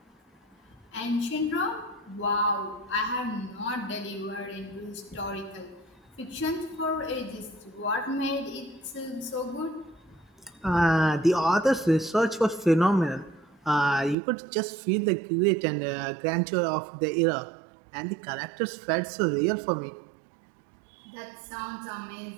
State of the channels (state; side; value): drops out; left; at 14.2 s